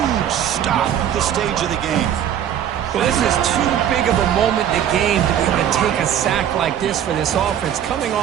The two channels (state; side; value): quieter; left; 10.1 dB